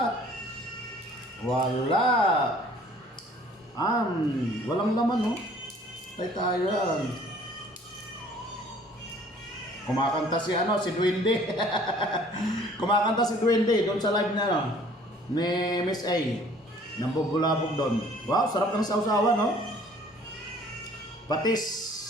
Wala. Walang laman oh. Tay tayo yan. Kumakanta si si Duwende. Kumakanta si Duwende doon sa live na ni Miss A. Nambubulabog doon. Wow, sarap ng sausawan, no? Patis.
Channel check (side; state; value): both; normal; correlation 0.54